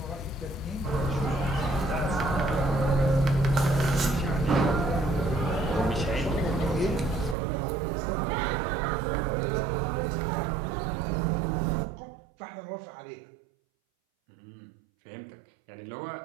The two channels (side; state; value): left; drops out; at 7.4 s